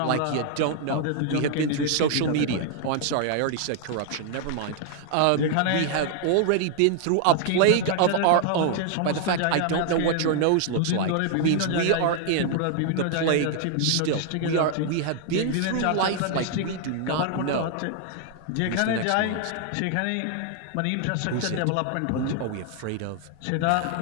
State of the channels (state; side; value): different; both; correlation 0.00